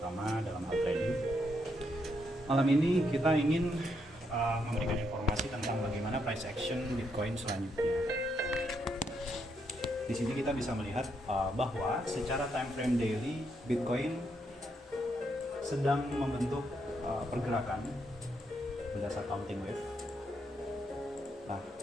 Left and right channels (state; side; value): normal; both; correlation 0.77